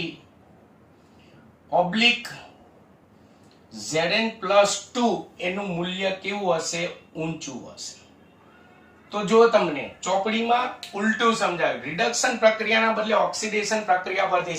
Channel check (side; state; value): both; identical; correlation 1.00